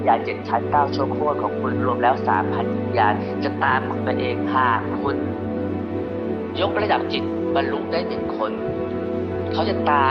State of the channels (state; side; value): identical; both; correlation 1.00